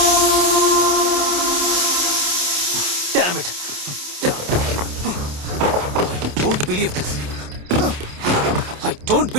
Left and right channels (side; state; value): left; late; 28 ms